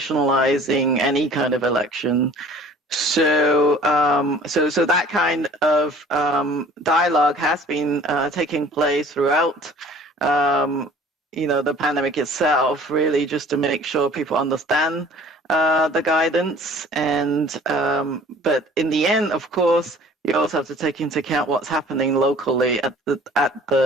any kind of election. So that kind of dialogue has been taking place throughout, the pandemic itself, really just to make sure people understand the guidance. And but in the end, of course, you also have to take into account what's happening locally at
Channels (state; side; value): normal; both; correlation 0.49